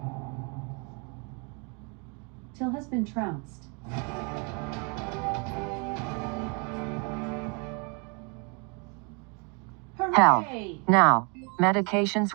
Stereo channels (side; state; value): left; quieter; 34.0 dB